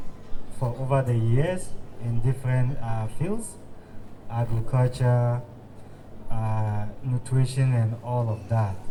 for over the years in different fields, agriculture, nutrition, and all of that.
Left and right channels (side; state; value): both; identical; correlation 1.00